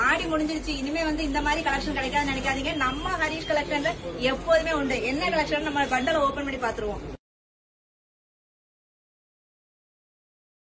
ஆடி முடிஞ்சிருச்சு, இனிமே இந்த மாதிரி கலெக்ஷன் கிடைக்காதுன்னு நினைக்காதீங்க. நம்ம ஹரிஷ் கலெக்ஷன்ல எப்போதுமே உண்டு. என்ன கலெக்ஷன் நம்ம பண்டலை ஓபன் பண்ணி பாத்துருவோம்.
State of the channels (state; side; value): identical; both; correlation 1.00